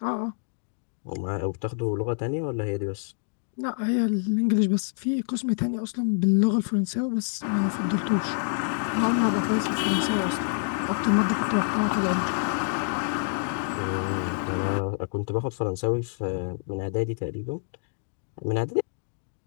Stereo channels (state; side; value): silent; right; digital silence